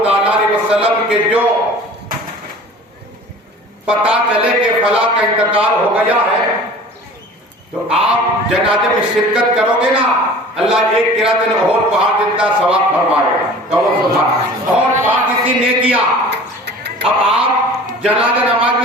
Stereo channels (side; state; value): both; normal; correlation 0.43